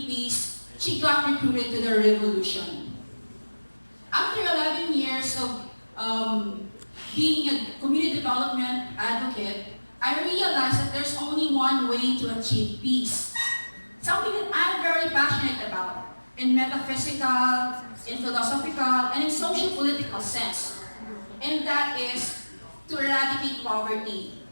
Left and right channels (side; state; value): both; inverted; correlation -1.00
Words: peace, she got recruited to the revolution. After 11 years of being a community development advocate, I realized that there's only one way to achieve peace. Something that I'm very passionate about in metaphysical, in philosophical, and in social political sense. And that is to eradicate poverty,